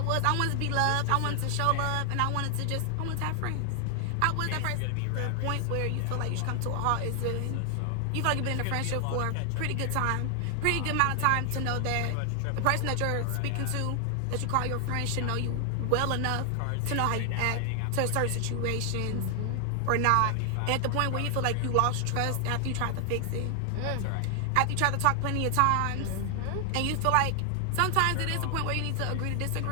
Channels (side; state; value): both; different; correlation 0.00